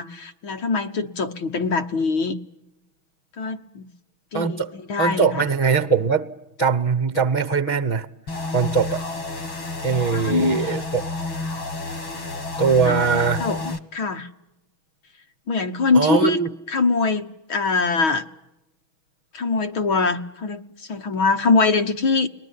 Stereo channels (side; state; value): right; late; 6.3 ms